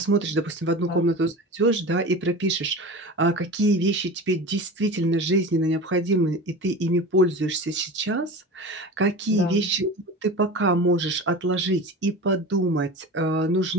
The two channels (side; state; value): both; normal; correlation 0.32